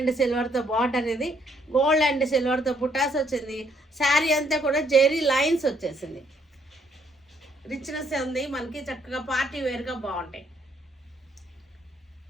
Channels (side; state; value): both; normal; correlation 0.69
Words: సిల్వర్తో బార్డర్. ఇది గోల్డ్ అండ్ సిల్వర్తో బుటాస్ వచ్చింది. శారీ అంతా కూడా జెరీ లైన్స్ వచ్చేసింది. రిచ్నెస్ ఉంది మనకి. చక్కగా పార్టీ వేర్గా బాగుంటాయి.